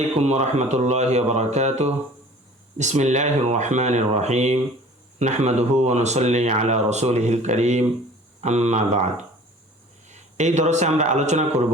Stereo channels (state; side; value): normal; both; correlation 0.46